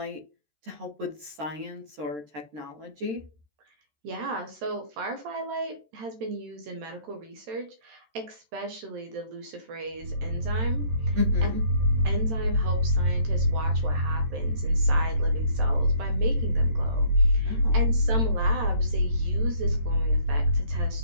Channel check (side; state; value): left; late; 13 ms